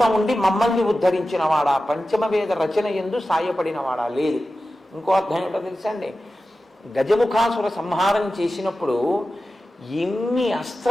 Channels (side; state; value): both; normal; correlation 0.94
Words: ఉండి మమ్మల్ని ఉద్ధరించిన వాడా, పంచమవేద రచన ఎందు సాయపడిన వాడా లేదు. ఇంకో అర్థం ఏంటో తెలుసా అండి, గజముఖాసుర సంహారం చేసినప్పుడు ఎన్ని